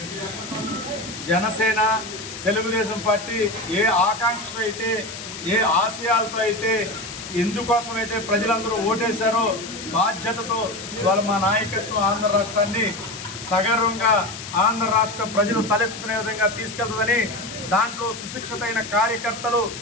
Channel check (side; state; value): left; noise; hiss, 10 dB below the sound